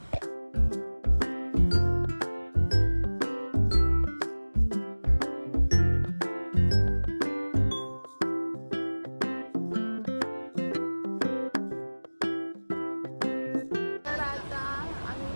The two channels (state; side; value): inverted; both; correlation -1.00